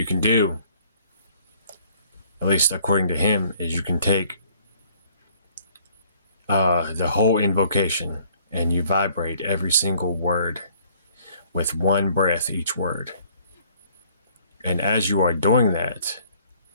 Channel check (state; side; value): inverted; both; correlation -0.59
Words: can do, at least according to him, is you can take the whole invocation and you vibrate every single word with one breath each word. And as you are doing that,